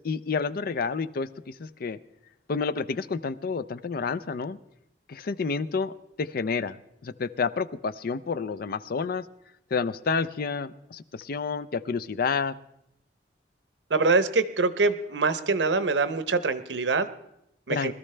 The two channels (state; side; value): normal; both; correlation -0.03